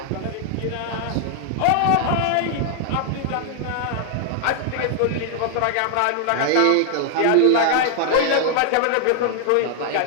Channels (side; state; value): both; different; correlation 0.00